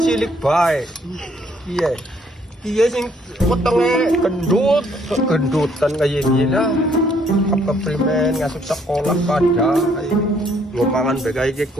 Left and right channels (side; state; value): both; normal; correlation 0.66